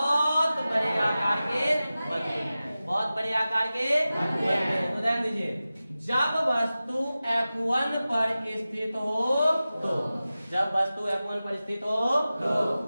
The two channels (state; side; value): inverted; both; correlation -0.96